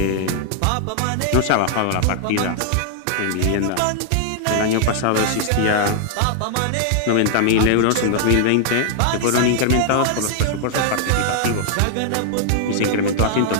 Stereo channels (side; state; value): both; different; correlation -0.01